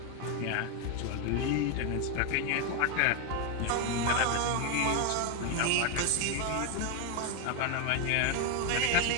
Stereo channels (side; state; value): both; different; correlation 0.01